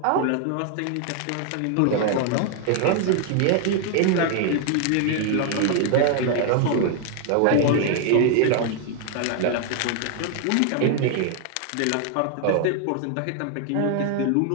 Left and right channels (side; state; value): both; different; correlation 0.00